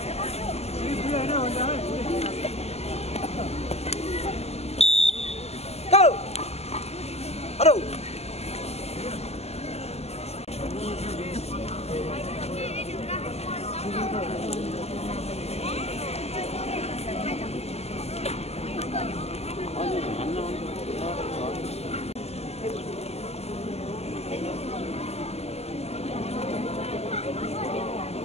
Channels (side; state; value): right; late; 0.30 ms